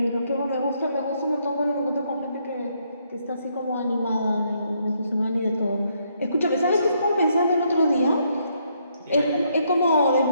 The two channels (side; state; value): both; inverted; correlation -0.73